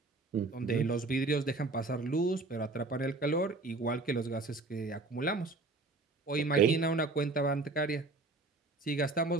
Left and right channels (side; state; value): left; quieter; 3.5 dB